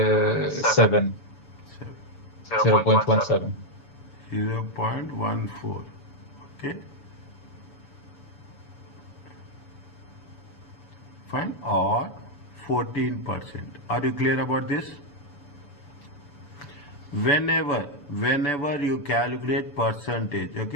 0.17. 0.14. Okay. Fine. Or 14%. Are you clear about this? Whenever you calculate percentage,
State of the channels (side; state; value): right; late; 7.0 ms